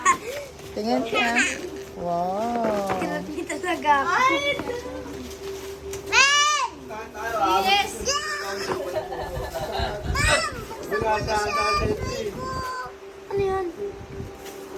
Tingin ka. Wow. Kirap ni talaga. Yes! Ano yan?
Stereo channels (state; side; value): identical; both; correlation 1.00